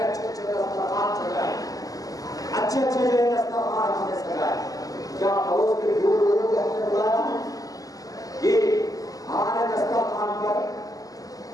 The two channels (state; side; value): late; right; 0.17 ms